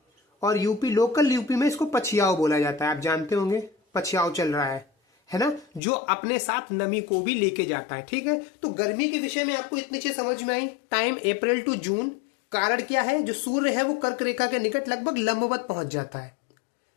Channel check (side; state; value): right; drops out; at 5.8 s